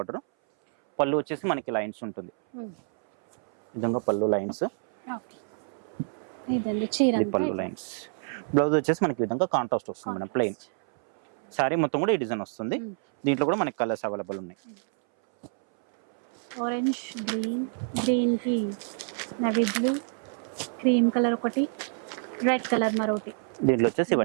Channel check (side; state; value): left; silent; 60 dB below the other